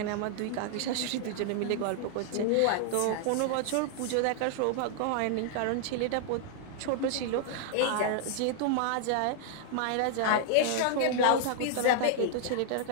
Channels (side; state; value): both; different; correlation 0.00